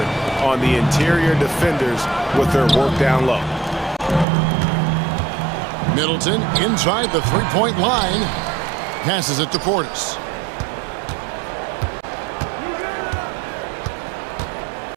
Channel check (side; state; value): left; drops out; at 4.2 s